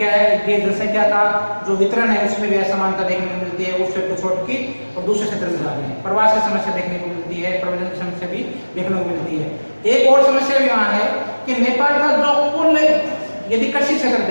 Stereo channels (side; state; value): both; inverted; correlation -1.00